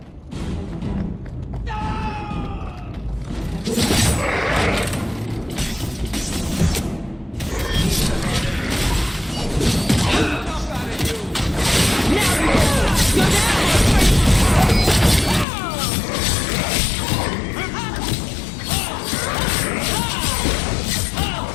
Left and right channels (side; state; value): right; drops out; at 15.5 s